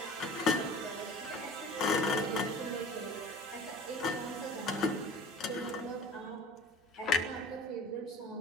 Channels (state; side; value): normal; both; correlation 0.42